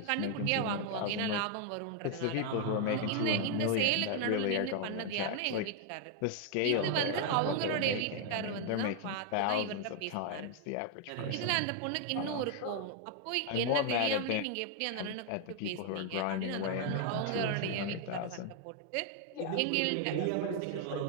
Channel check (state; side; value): different; both; correlation 0.00